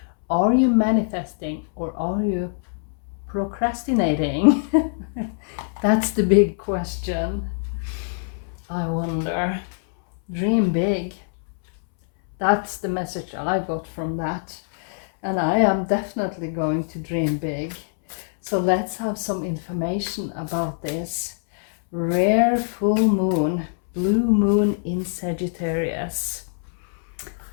Are you manifesting or are you procrastinating? That's the big question. I wonder. Dream big. That's the message I got from that. And I am definitely going to dream big. So let's have some information about this. Rare full moon, blue moon in Sagittarius.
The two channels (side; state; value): right; silent; 63 dB below the other